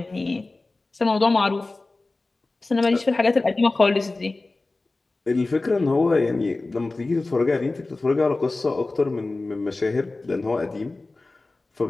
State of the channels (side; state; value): right; quieter; 3.3 dB